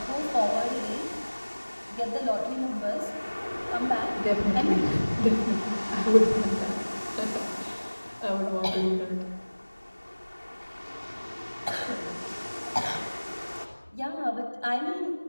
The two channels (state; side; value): inverted; both; correlation -1.00